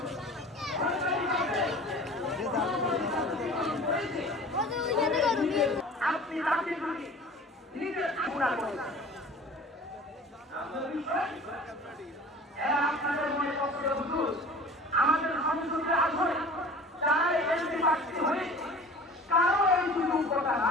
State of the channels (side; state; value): both; normal; correlation 0.42